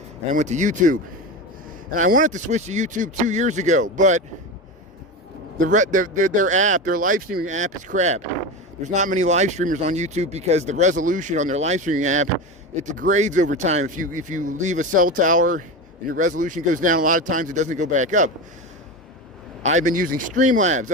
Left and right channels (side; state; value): both; normal; correlation 0.22